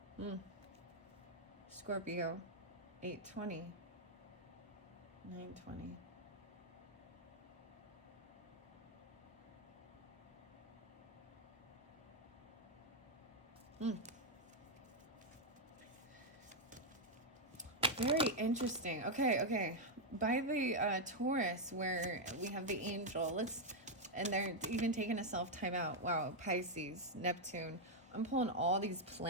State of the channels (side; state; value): both; normal; correlation -0.01